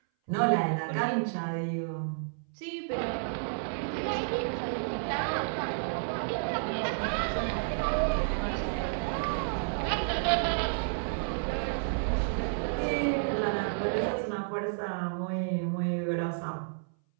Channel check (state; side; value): silent; left; 57 dB below the other